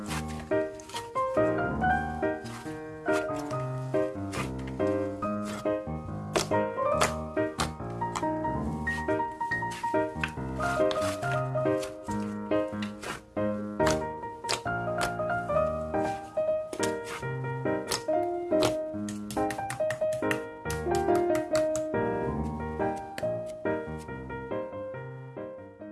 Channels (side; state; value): both; identical; correlation 1.00